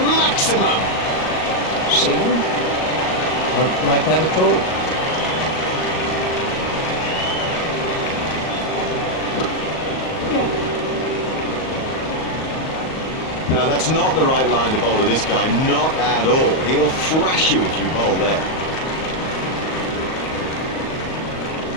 Maximum. Singh won't like that at all. Now that's not the right line to bowl to this guy, not at all. He'll thrash you if you bowl there.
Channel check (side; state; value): right; late; 38 ms